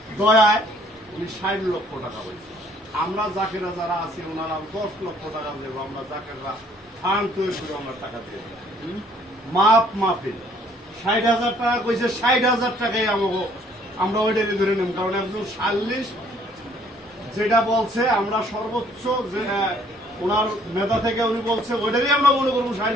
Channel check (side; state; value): both; normal; correlation 0.61